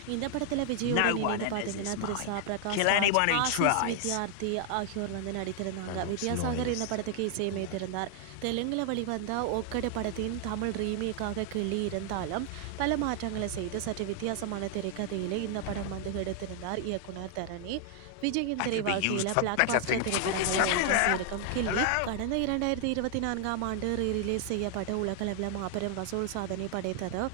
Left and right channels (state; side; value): different; both; correlation 0.00